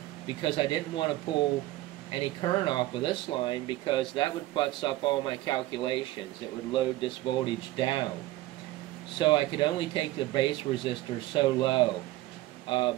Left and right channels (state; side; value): quieter; left; 16.9 dB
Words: because I didn't want to pull any current off of this line, because that would futz up all my calculations. It would load this voltage down. So I could only take the base resistor so low